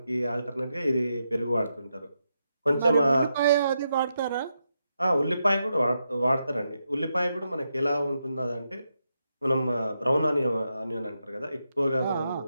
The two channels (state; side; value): inverted; both; correlation -0.84